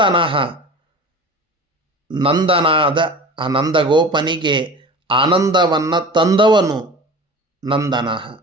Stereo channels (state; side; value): normal; both; correlation 0.37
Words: ನಂದನಾದ ಆ ನಂದಗೋಪನಿಗೆ ಆನಂದವನ್ನು ತಂದವನು ನಂದನಃ.